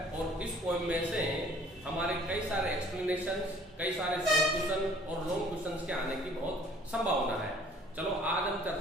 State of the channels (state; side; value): normal; both; correlation 0.54